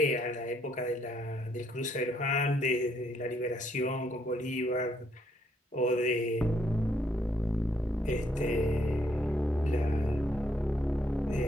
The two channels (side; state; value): both; normal; correlation 0.71